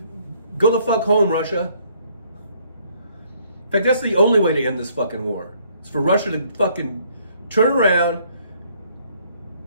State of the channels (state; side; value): inverted; both; correlation -0.65